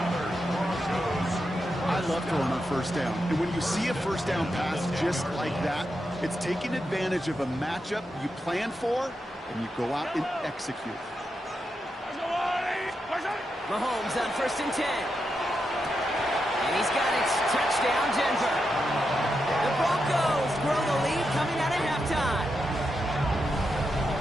I love throwing on 1st down. And when you see a 1st down pass just like that, it's taking advantage of a matchup you plan for, and you go out and execute. Mahomes on 1st and 10. And he's got it. Touchdown, Denver. The Broncos grow the lead coming out at halftime.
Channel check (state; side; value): normal; both; correlation 0.86